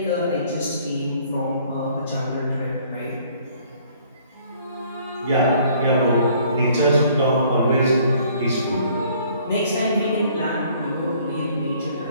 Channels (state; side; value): inverted; both; correlation -0.59